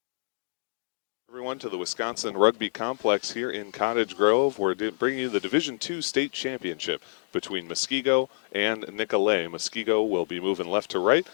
To the Wisconsin Rugby Complex here in Cottage Grove, where they bring you the Division II State Championship between Muskego and Nicolet. Muskego will be moving left to right.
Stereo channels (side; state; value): right; silent; digital silence